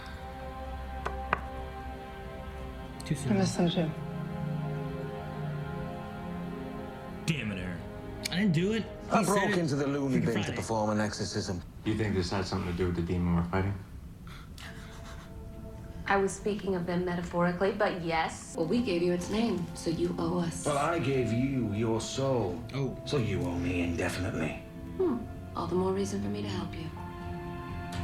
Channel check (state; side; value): identical; both; correlation 1.00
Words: Too soon. I miss them too. Damn it, Aaron. I didn't do it. I broke into the loony bin to Friday. perform an exorcism. Do you think this had something to do with the demon we're fighting? I was speaking of them metaphorically, but yes. Well, we gave you its name, so you owe us. Well, I gave you your soul. Oh. So you owe me indefinitely. All the more reason for me to help you.